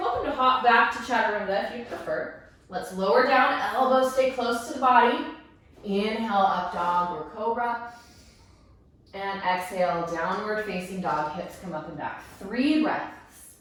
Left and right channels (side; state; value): both; identical; correlation 1.00